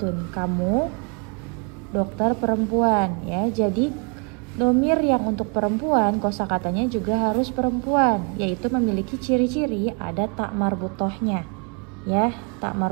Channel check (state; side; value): quieter; left; 36.1 dB